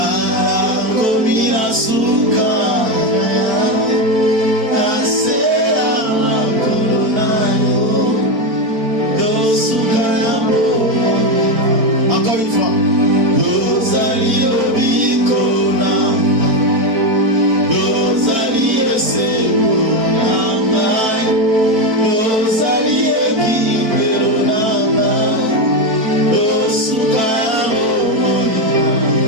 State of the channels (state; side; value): late; left; 4.5 ms